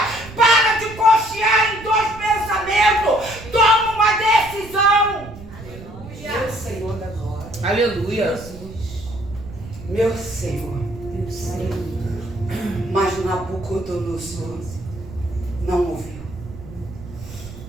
para de cochear em dois pensamentos, toma uma decisão. Aleluia. Meu Senhor da glória. Aleluia. Meu Senhor. Mas Nabucodonosor não ouviu.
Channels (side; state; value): right; noise; rumble, 15 dB below the sound